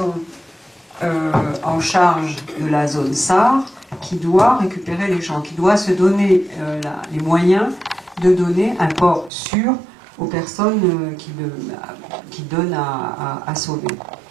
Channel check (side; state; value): left; drops out; at 9.3 s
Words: en charge de la zone SAR qui doit récupérer les gens, qui doit se donner les moyens de donner un port sûr aux personnes qui donnent à sauver.